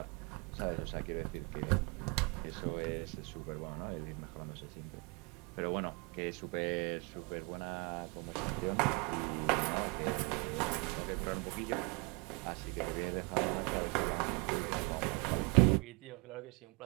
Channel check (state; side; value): quieter; left; 30.5 dB